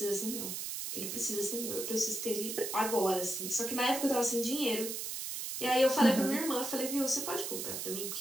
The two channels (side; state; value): right; noise; hiss, 4 dB below the sound